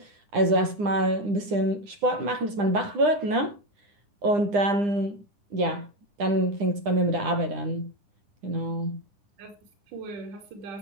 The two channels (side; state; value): left; late; 9.9 ms